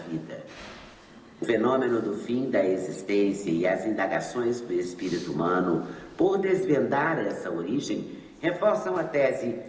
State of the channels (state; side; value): identical; both; correlation 1.00